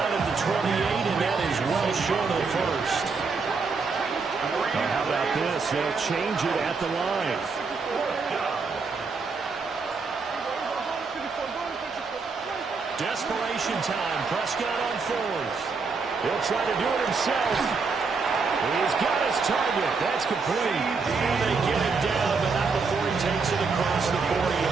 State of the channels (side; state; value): left; quieter; 4.7 dB